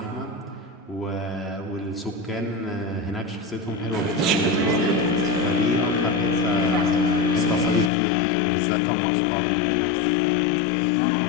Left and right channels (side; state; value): right; drops out; at 7.9 s